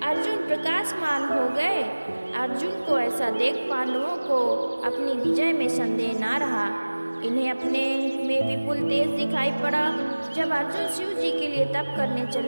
अर्जुन प्रकाशमान हो गए। अर्जुन को ऐसा देख पांडवों को अपनी विजय में संदेह ना रहा। इन्हें अपने में विपुल तेज दिखाई पड़ा। जब अर्जुन शिव जी के लिए तप करने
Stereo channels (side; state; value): both; inverted; correlation -1.00